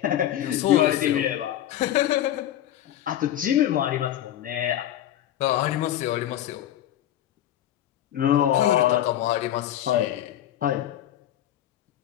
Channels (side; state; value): right; quieter; 12.0 dB